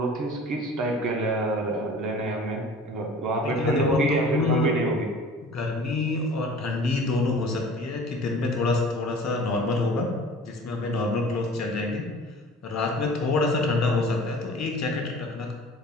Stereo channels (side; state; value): both; normal; correlation 0.44